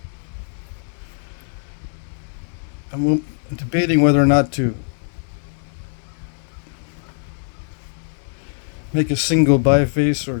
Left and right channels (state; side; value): silent; right; 64 dB below the other